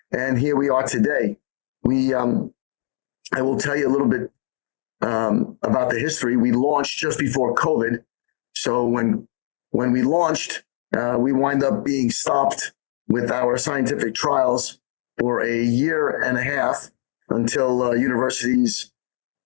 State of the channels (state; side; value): silent; right; digital silence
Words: and here we are today. I will tell you a little bit about the history. We launched just before COVID, so when we launched, we wind up being stopped with our scientific trials for a year and a half until universities